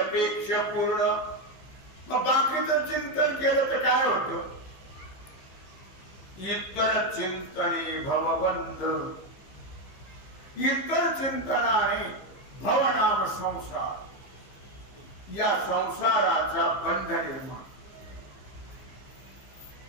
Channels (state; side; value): late; right; 15 ms